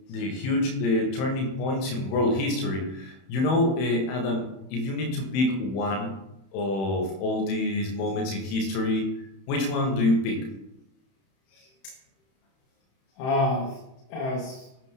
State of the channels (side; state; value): right; late; 31 ms